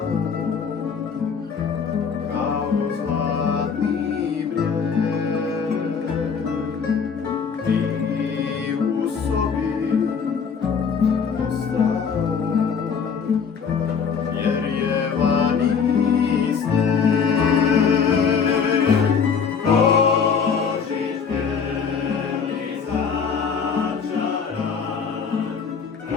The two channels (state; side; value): quieter; right; 6.2 dB